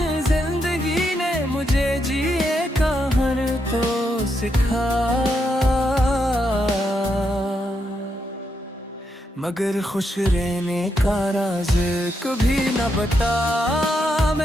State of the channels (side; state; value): both; normal; correlation 0.81